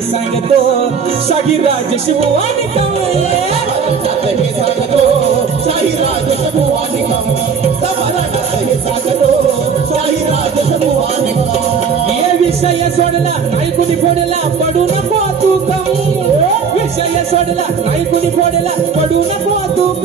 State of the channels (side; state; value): left; quieter; 6.2 dB